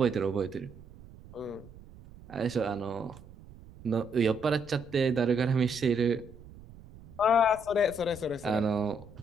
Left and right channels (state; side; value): noise; right; rumble, 20 dB below the sound